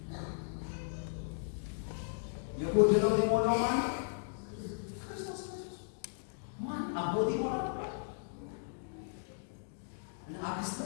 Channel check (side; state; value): right; silent; digital silence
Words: የጎደለውን የሞላው ማን ነው? ክርስቶስ ኢየሱስ። ማን አቦት ይሞላል? አክስት